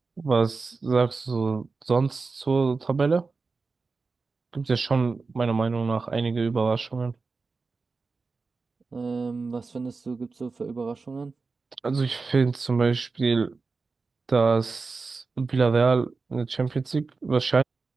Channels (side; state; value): left; quieter; 4.2 dB